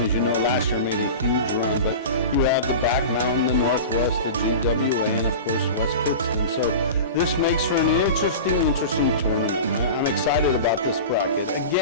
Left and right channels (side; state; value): both; inverted; correlation -0.31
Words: as you know, last year made a huge run. But you have the Back Mountain, the Northwest, the GWA, and of course West Pittston. So this makes for an interesting tournament. I'm excited about this bracket.